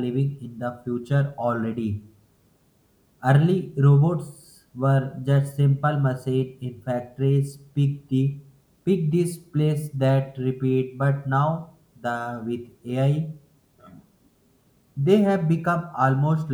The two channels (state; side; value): identical; both; correlation 1.00